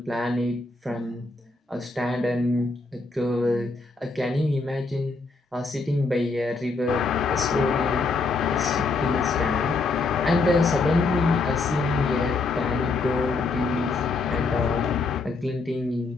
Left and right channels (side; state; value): right; quieter; 3.8 dB